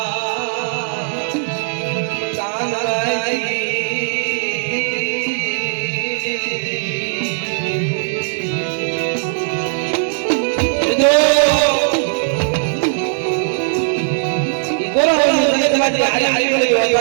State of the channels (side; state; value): left; silent; digital silence